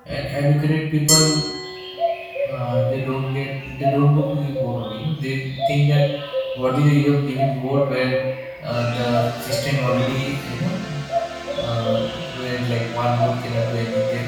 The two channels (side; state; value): both; identical; correlation 1.00